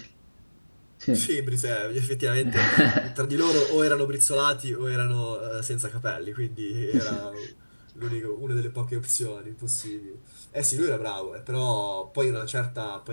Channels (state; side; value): inverted; both; correlation -1.00